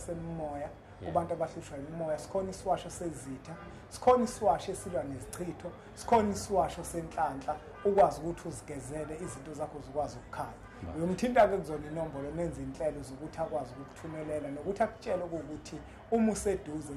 kubantu abahlushwa imimoya sikhona isiwasho sezitha sikhona isiwasho esilwa nezichitho sikhona isiwasho senhlanhla ukwazi ukuthi uzigezele izinto zakho zikwazi ukukhanya uyomthinta ke kuzona inombolo nenza inhlelo zokuthi akwazi ukuthumelela nokuthi akutshele ukuthi uma useduze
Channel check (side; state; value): both; identical; correlation 1.00